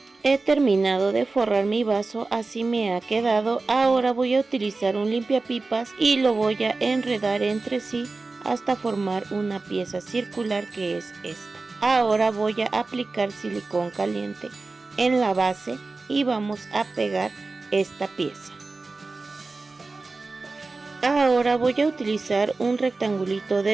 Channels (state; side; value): quieter; left; 3.7 dB